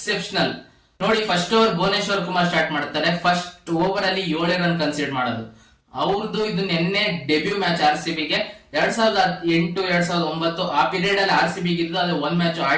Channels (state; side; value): identical; both; correlation 1.00